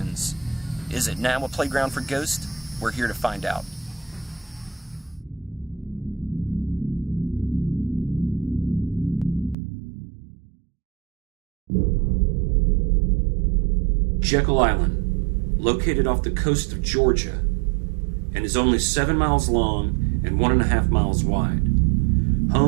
Is it now a playground for ghosts? We're here to find out. Jekyll Island, located off the coast of Georgia, and is only 7 miles long and 1.5 miles wide.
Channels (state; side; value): drops out; left; at 9.6 s